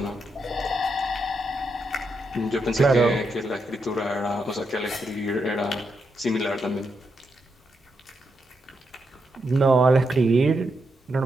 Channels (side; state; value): both; normal; correlation 0.83